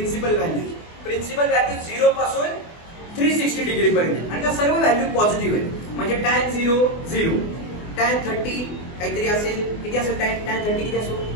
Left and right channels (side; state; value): right; late; 24 ms